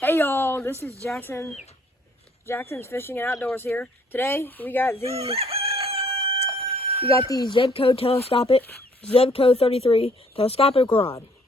Hey y'all, this is Jackson. Jackson's Fishing and Outdoors here. Today we got the Zebco telescopic, Zebco 33 telescopic rod.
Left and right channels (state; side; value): normal; both; correlation 0.63